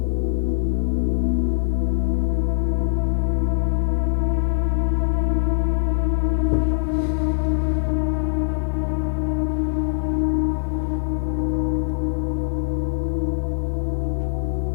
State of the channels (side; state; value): right; silent; digital silence